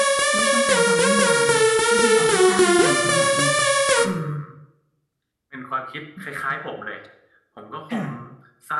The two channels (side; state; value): both; identical; correlation 1.00